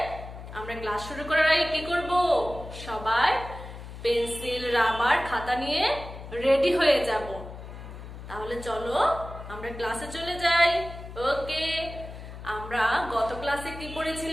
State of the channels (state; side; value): noise; left; hum, 12 dB below the sound